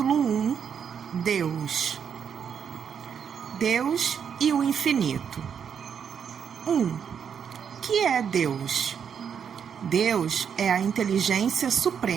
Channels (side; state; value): left; quieter; 7.5 dB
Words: 1. Deus. Deus e o infinito. 1. Que é Deus? Deus é a inteligência